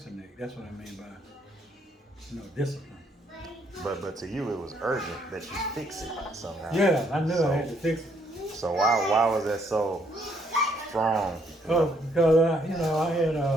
That's what I mean by, discipline. But to you, it was urgent that you fix it somehow. Yeah, I knew I had to fix it. So why was that so strong? Oh, because I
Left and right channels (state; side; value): normal; both; correlation 0.70